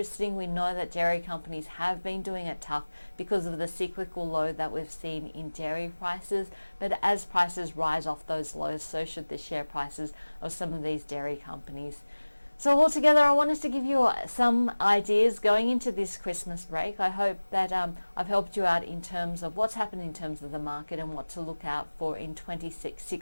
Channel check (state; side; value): inverted; both; correlation -1.00